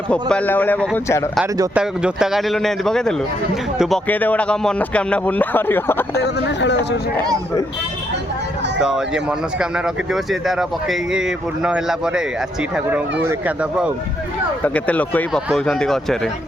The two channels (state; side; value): normal; both; correlation 0.76